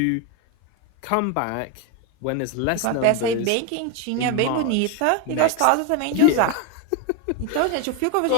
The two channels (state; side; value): different; both; correlation 0.02